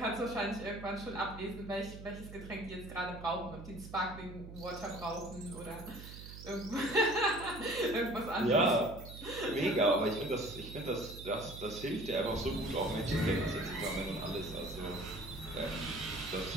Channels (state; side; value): noise; right; hum, 13 dB below the sound